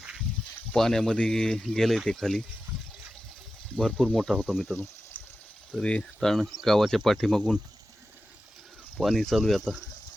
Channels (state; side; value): normal; both; correlation 0.92